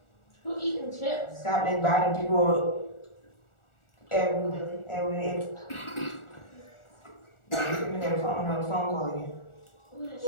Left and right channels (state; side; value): late; right; 1.4 ms